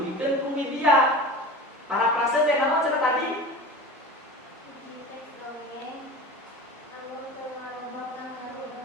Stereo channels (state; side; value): normal; both; correlation 0.35